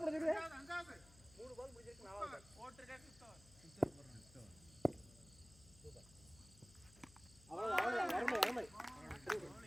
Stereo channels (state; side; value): noise; left; hum, 23 dB below the sound